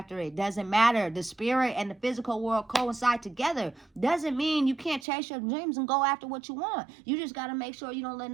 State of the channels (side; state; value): left; drops out; at 5.1 s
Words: it. Doesn't matter. The spirit and the physical world coincide together. Doesn't mean you can't chase your dreams and go after what you want. You just got to make sure you don't let